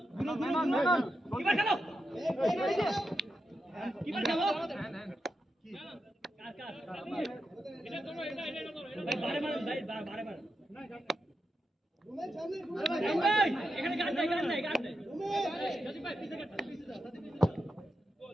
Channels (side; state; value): both; normal; correlation 0.87